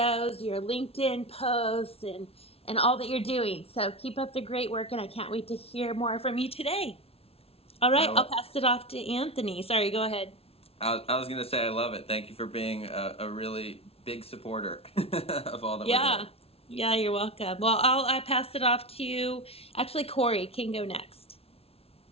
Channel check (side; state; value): right; late; 0.29 ms